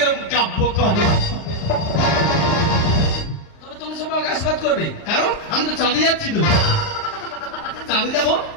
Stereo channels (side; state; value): right; late; 38 ms